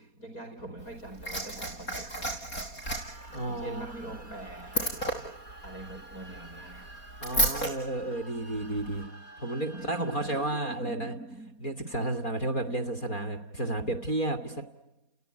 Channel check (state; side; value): late; right; 4.2 ms